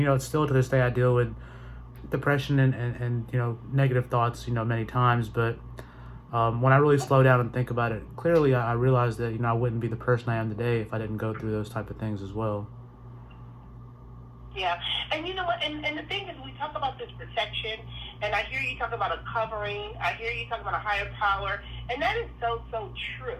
still to this day I deal with depression and negative thoughts many times. But when I really slow down and think about it clearly, I realized that I wouldn't be the person I am today if I didn't go through those type of things as well. Yeah, and you know what, and the thing is, we talk about this protection, and I hear you talk about a covering, I hear you talk about a higher power, and that is so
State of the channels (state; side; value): identical; both; correlation 1.00